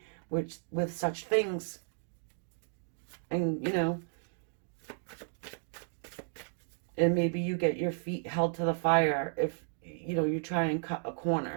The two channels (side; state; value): left; silent; digital silence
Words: with such things? And, and maybe you get your feet held to the fire if you know, you try and cut a